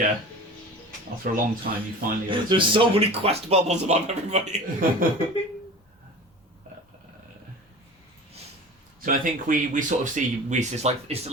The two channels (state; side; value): normal; both; correlation 0.36